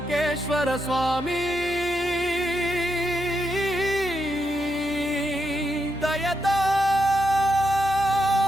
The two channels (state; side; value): normal; both; correlation 0.83